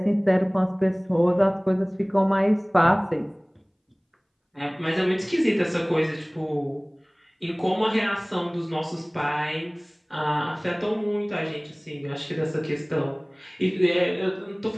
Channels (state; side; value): identical; both; correlation 1.00